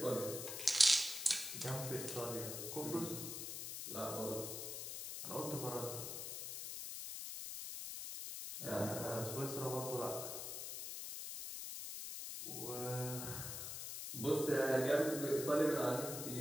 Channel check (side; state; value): left; noise; hiss, 6 dB below the sound